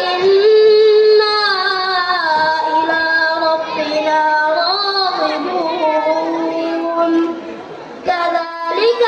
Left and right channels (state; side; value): identical; both; correlation 1.00